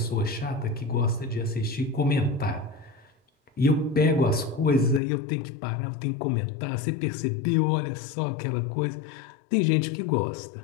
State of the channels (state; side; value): drops out; right; at 5.0 s